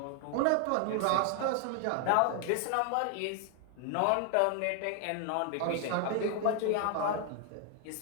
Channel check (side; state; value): both; different; correlation 0.00